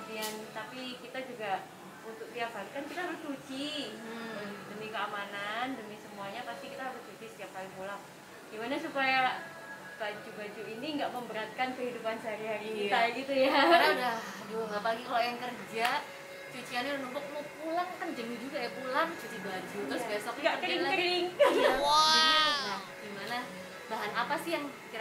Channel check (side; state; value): both; identical; correlation 1.00